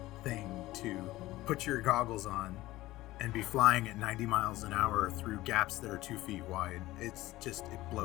thing to put your goggles on and be flying at 90 miles an hour through gaps that are 2 feet wide. It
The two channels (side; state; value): right; quieter; 17.4 dB